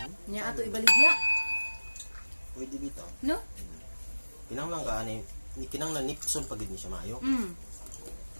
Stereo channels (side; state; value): both; inverted; correlation -1.00